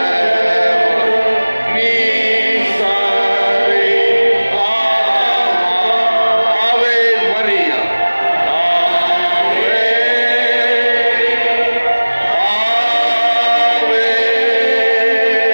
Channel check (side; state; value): both; inverted; correlation -1.00